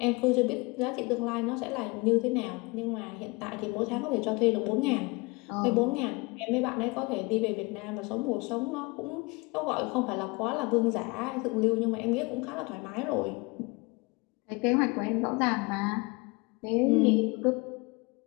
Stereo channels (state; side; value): quieter; right; 26.7 dB